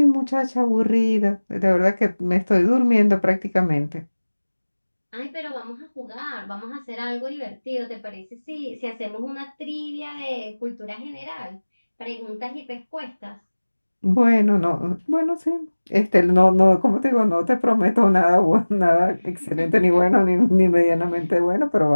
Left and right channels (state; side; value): inverted; both; correlation -1.00